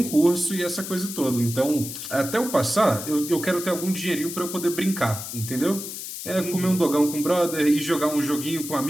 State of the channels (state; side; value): noise; left; hiss, 8 dB below the sound